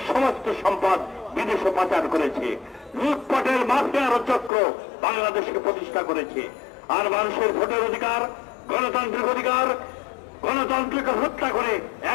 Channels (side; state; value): right; drops out; at 4.5 s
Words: সমস্ত সম্পদ বিদেশে পাচার করেছে। লুটপাটের মাফিয়ার চক্র বাংলাদেশকে প্রতিষ্ঠা করেছে। আর মানুষের ভোটের অধিকার, গণতান্ত্রিক অধিকার, গণতন্ত্রকে হত্যা করে